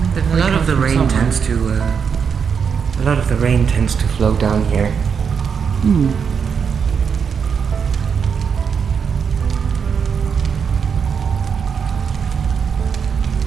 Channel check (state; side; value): quieter; left; 6.6 dB